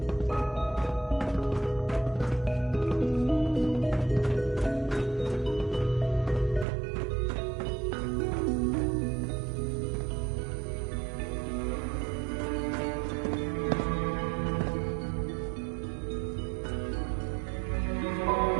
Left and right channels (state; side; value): drops out; left; at 6.7 s